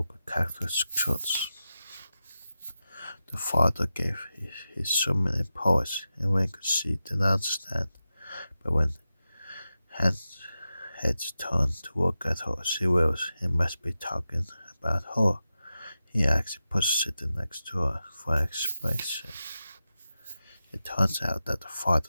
Catholic church. The father gave his son many poets, and when she didn't understand, but when heads turned to look at her, she realized he must be talking about her. He actually put sitting next to her for an explanation. It turns out that the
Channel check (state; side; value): inverted; both; correlation -0.92